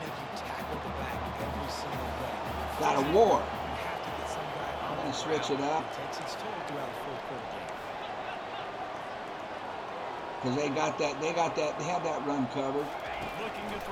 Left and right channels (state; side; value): identical; both; correlation 1.00